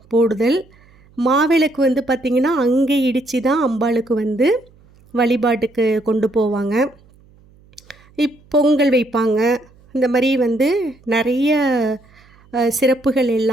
போடுதல். மாவிளக்கு பார்த்திங்கன்னா அங்கே இடித்து தான் அம்பாளுக்கு வழிபாட்டுக்கு கொண்டு போவாங்க. பொங்கல் வைப்பாங்க. இந்த மாதிரி நிறைய சிறப்புகள்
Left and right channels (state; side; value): noise; right; hum, 29 dB below the sound